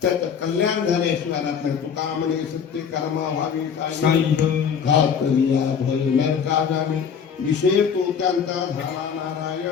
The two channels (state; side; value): quieter; right; 7.1 dB